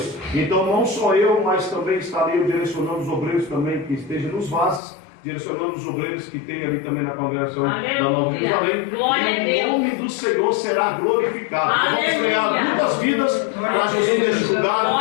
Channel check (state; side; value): drops out; right; at 4.8 s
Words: Então não só eu, mas também estarei direcionando os obreiros também que estejam nos vasos, direcionando os obreiros que tem ali também na congregação da Nova Jerusalém. Glória a E Deus. o nome do Senhor será glorificado. Aleluia. Vamos ganhar muitas vidas para Jesus neste lugar,